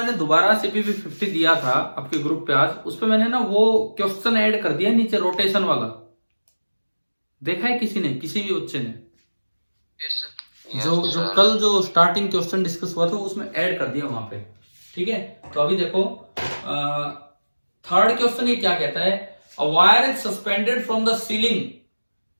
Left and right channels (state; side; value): inverted; both; correlation -1.00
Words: दोबारा सीपीपी 50 दिया था आपके ग्रुप पे आज, उस पे मैंने ना वो क्वेश्चन ऐड कर दिया नीचे, रोटेशन वाला, देखा है किसी ने, किसी भी बच्चे ने? Yes, sir. जो कल जो स्टार्टिंग क्वेश्चन डिस्कस हुआ था उसमें ऐड कर दिया वहां पे। ठीक है, तो अभी देखो थर्ड क्वेश्चन ये क्या कहता है, a wire is suspended from the ceiling